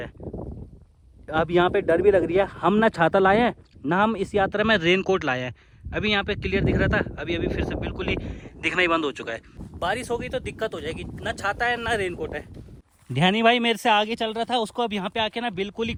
हैं। अब यहाँ पे डर भी लग रही है, हम ना छाता लाए हैं, ना हम इस यात्रा में रेन कोट लाए हैं। अभी यहाँ पे क्लियर दिख रहा था, अभी अभी फिर से बिल्कुल ही दिखना ही बंद हो चुका है। बारिश हो गई तो दिक्कत हो जाएगी, ना छाता है ना रेनकोट है। ध्यानी भाई मेरे से आगे चल रहा था, उसको अब यहाँ पे आके ना बिल्कुल ही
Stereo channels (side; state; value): both; identical; correlation 1.00